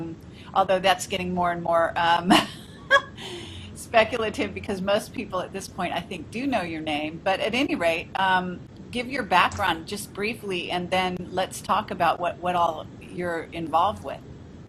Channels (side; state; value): both; identical; correlation 1.00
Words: although that's getting more and more speculative, because most people at this point, I think, do know your name. But at any rate, give your background just briefly, and then let's talk about what all you're involved with.